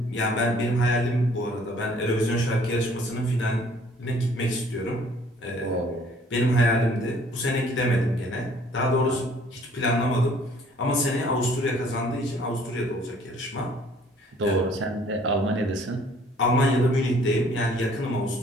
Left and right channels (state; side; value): normal; both; correlation 0.58